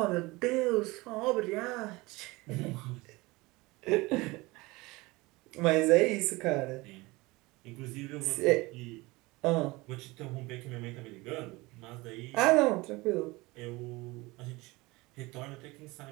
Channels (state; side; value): quieter; left; 22.5 dB